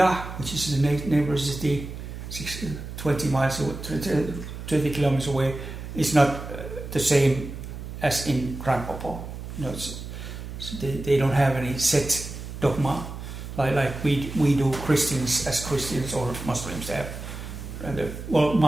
which is the neighbor city, 20 miles away, 20 kilometers away, is not the same as in Grand Popo. They don't have any set dogma like we do Christians as Christians, or Muslims have. Well,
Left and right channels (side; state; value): right; noise; hum, 9 dB below the sound